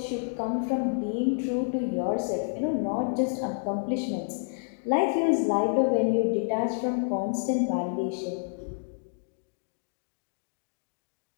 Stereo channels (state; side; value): silent; right; digital silence